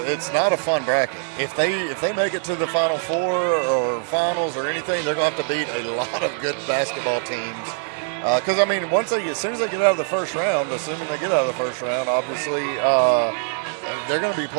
not a fun bracket. If they make it to the Final Four or finals or anything, they're going to have to beat a lot of good basketball teams. Because, I mean, as soon as they get out of the first round, assuming they get out of the first round, obviously they're going to be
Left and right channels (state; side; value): silent; left; 64 dB below the other